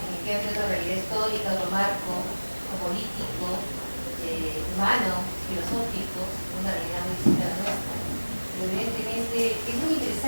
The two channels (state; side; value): inverted; both; correlation -1.00